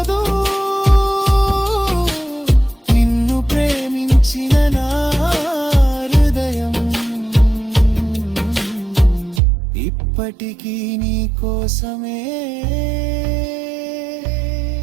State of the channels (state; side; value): drops out; left; at 9.4 s